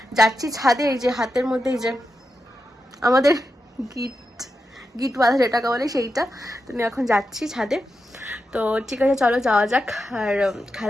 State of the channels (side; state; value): both; normal; correlation 0.88